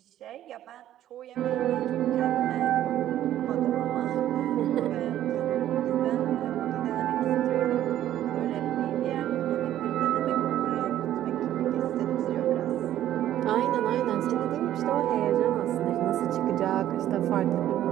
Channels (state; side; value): quieter; left; 12.3 dB